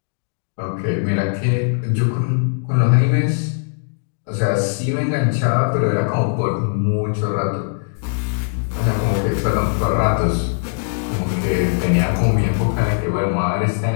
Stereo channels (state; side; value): silent; right; digital silence